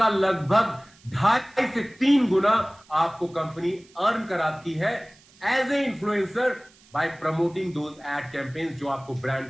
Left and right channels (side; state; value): right; noise; hiss, 28 dB below the sound